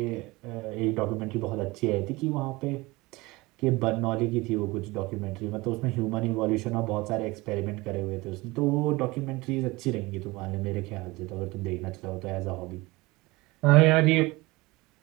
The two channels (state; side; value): quieter; left; 22.2 dB